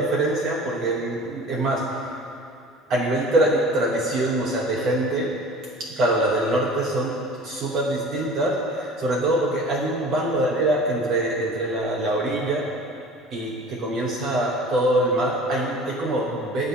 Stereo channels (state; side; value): normal; both; correlation 0.42